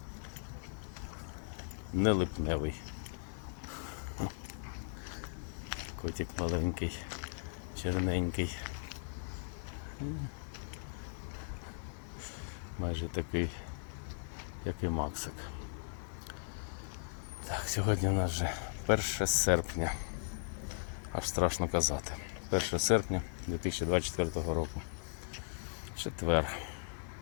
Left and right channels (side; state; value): right; silent; digital silence